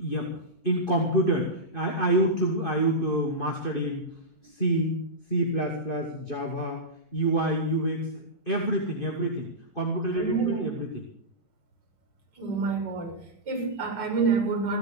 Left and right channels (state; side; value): late; right; 2.5 ms